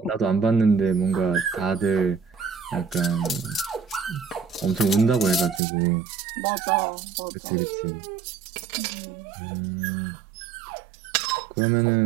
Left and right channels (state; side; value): drops out; left; at 5.6 s